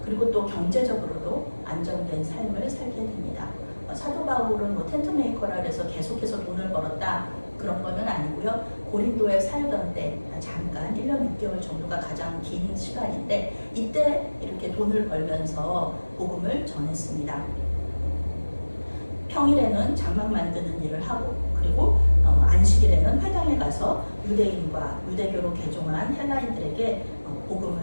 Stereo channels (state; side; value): inverted; both; correlation -1.00